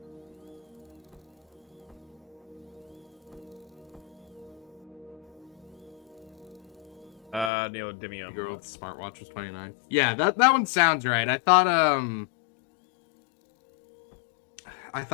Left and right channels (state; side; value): drops out; right; at 7.5 s